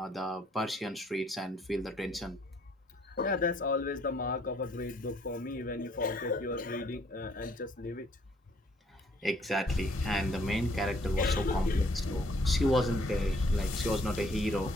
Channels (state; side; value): normal; both; correlation 0.64